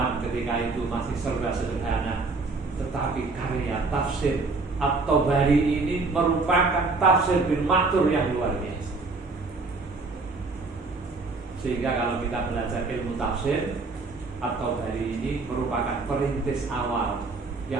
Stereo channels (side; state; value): left; quieter; 3.8 dB